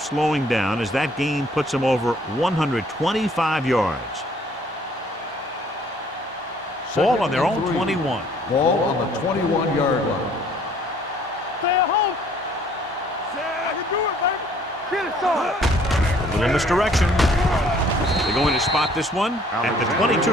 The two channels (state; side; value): normal; both; correlation 0.59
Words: slowing down as that gain puts him over 125 yards. Ball on their own 21. Ball on the 21-yard line. Stay at home. I can do it, baby. Get it, son. A little misdirection. They're going to spot this one at the